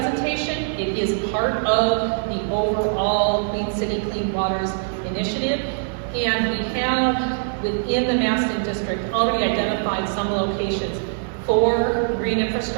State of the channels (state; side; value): silent; left; digital silence